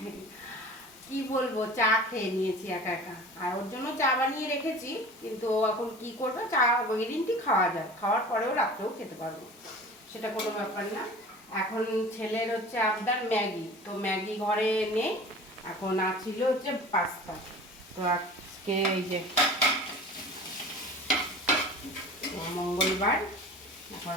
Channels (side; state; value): both; normal; correlation 0.40